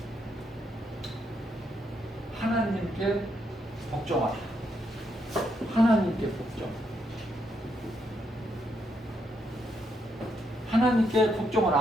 하나님께 복종하라. 하나님께 복종. 하나님께 복종을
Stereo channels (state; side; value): normal; both; correlation 0.77